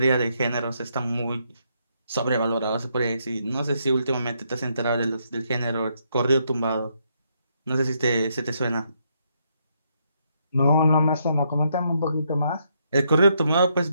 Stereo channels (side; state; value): both; inverted; correlation -0.76